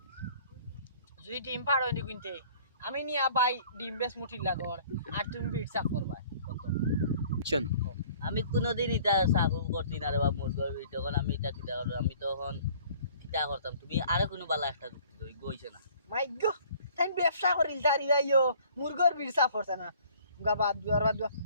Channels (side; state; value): both; inverted; correlation -0.53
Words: যদি ডিম পার হয়নি কিনতে, আমি নিয়া বাই ডিম বেশ মুঠির লাগর আর তুমি বিট সাফ করবা কত? আমি কোনোদিন এটা সাফল করছি না রে বা মুরগর তখন আমি এটা কিতা করবো, আমি তখন কিতা করতাম। তুমি আরো কোনো বালা একটা যুক্তি দেই বইছে না। মাই গো, তাই ব্যবসা করিল তারি যাইও মুরগর বিট সাফ করছে না গা বাদ দুয়ার